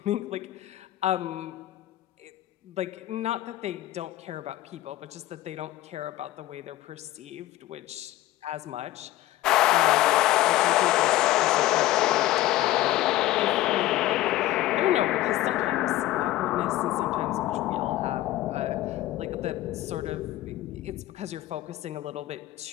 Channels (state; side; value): quieter; right; 15.8 dB